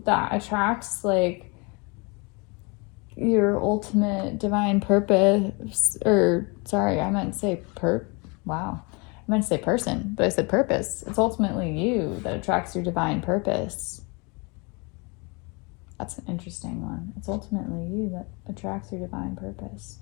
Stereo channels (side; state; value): right; quieter; 30.4 dB